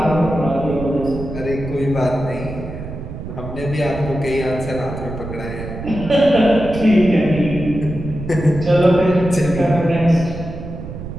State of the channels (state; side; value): noise; right; rumble, 9 dB below the sound